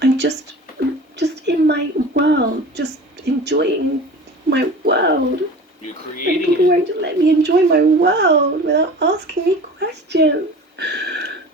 I'm just in my world, just enjoying my world. You're creating and people won't let me enjoy my world without asking me questions.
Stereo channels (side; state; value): both; normal; correlation 0.38